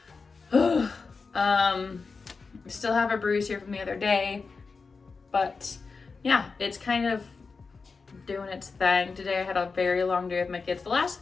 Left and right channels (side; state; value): right; quieter; 4.6 dB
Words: Still have a bruise here from the other day, but yeah, it's kind of doing its thing. Today I had a very long day with my kids. The last